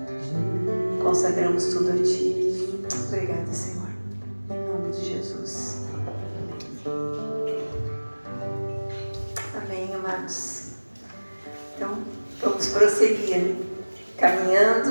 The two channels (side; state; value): both; inverted; correlation -1.00